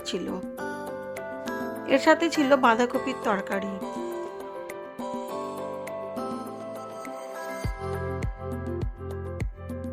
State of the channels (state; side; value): identical; both; correlation 1.00